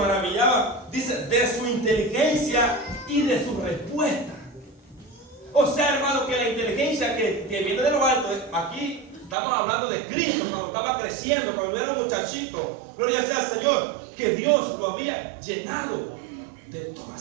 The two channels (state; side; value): drops out; left; at 9.3 s